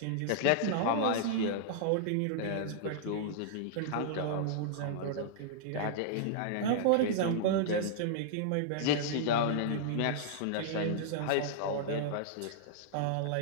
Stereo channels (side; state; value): both; different; correlation -0.01